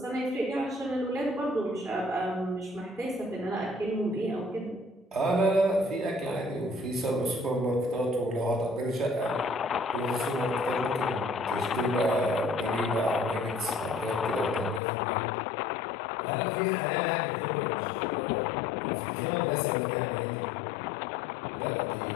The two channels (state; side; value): drops out; right; at 14.8 s